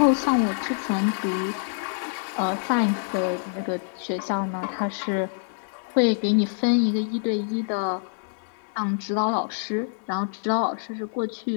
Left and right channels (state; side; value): silent; right; digital silence